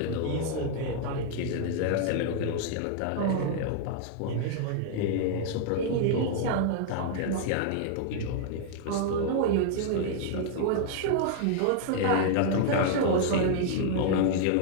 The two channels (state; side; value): different; both; correlation -0.01